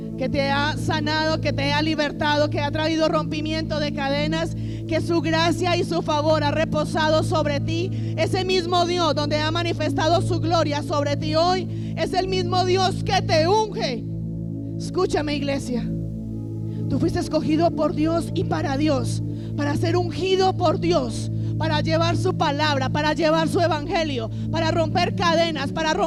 que te ha sanado, que te ha libertado, que ha traído rompimiento de cadenas, que su gracia y su favor ha reposado sobre ti. Ese mismo Dios donde ha manifestado su gloria sobre ti hoy, es el mismo Dios que te unge. Escúchame, iglesia, tú fuiste escogido por Dios y para Dios, para ser ungido por Dios, para llevar su palabra, para llevar su evangelio, para romper cadenas, para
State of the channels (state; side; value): identical; both; correlation 1.00